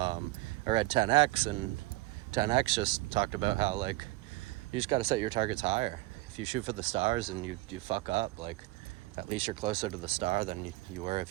read 10X, and 10X just talked about how you just got to set your targets higher. If you shoot for the stars and you fuck up, at least you're closer to the star than you were if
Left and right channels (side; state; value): left; quieter; 20.3 dB